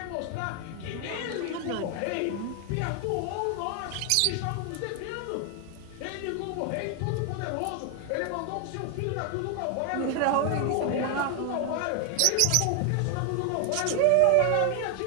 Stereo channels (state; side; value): different; both; correlation 0.01